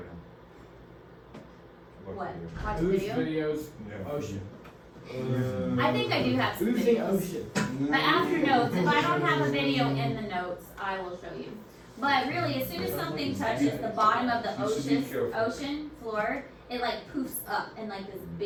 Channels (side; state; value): both; identical; correlation 1.00